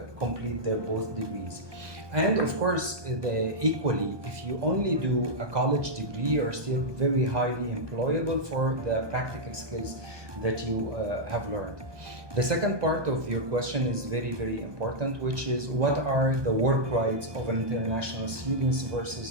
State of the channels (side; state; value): left; late; 1.2 ms